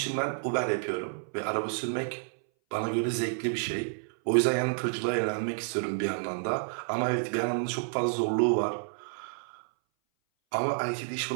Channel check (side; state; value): left; silent; 58 dB below the other